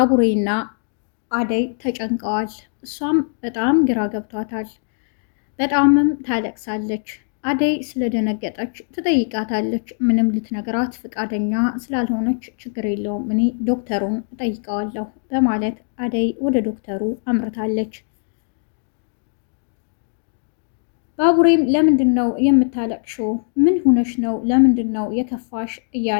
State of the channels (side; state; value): right; silent; 65 dB below the other